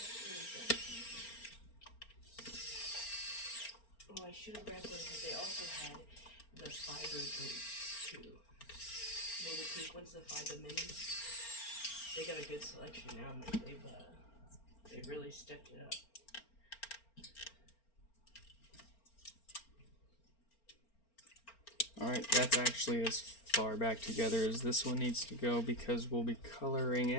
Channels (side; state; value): right; late; 4.4 ms